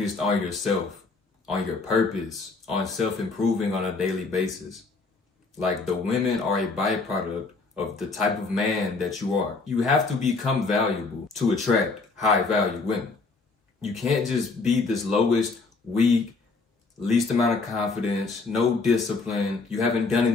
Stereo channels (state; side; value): quieter; right; 4.0 dB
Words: on yourself, on your purpose, on self-improving on a daily basis. Like, the women are a byproduct of the type of man that you are. You have to become valuable to attract high-value women. You can't just be this lowest, weak, least amount of confidence, no discipline. You haven't done